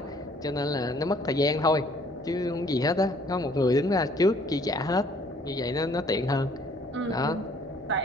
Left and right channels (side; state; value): both; normal; correlation 0.60